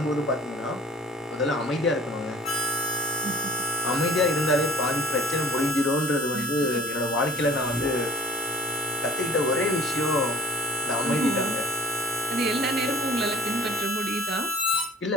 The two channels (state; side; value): normal; both; correlation 0.50